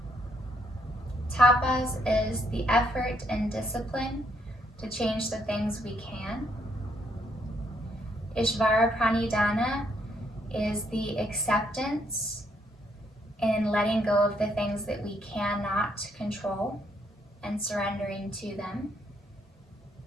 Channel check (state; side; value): normal; both; correlation 0.72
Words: Tapas is the effort and discipline to change the things we can. Ishvara Pranidhana is the acceptance and letting go of the things that we cannot control and surrendering to them.